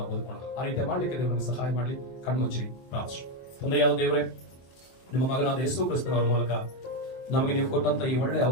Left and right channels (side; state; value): right; late; 23 ms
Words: ಬದುಕೋಣ. ಆ ರೀತಿ ಮಾಡ್ಲಿಕ್ಕೆ ದೇವರು ನಮಗೆ ಸಹಾಯ ಮಾಡ್ಲಿ. ಕಣ್ಮುಚ್ಚಿರಿ ಪ್ರಾರ್ಥನೆ. ತಂದೆಯಾದ ದೇವರೇ, ನಿಮ್ಮ ಮಗನಾದ ಯೇಸು ಕ್ರಿಸ್ತನವರ ಮೂಲಕ ನಮಗೆ ನೀವು ಕೊಟ್ಟಂತ ಈ ಒಳ್ಳೆಯ